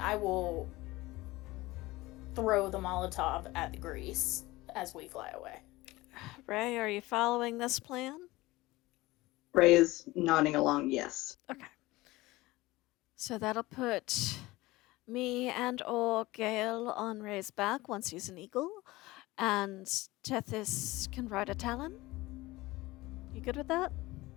will throw the Molotov at the grease as we fly away. Ray, are you following this plan? Ray is nodding along, yes. Okay. So that'll put me and or Gale on Ray's back once he's an eagle, and Tethys can ride a talon. You good with that?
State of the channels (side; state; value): right; quieter; 19.7 dB